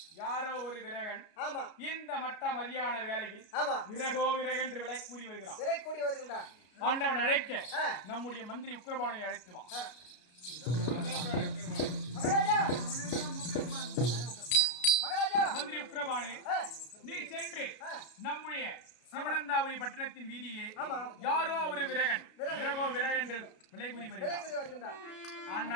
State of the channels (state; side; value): late; right; 33 ms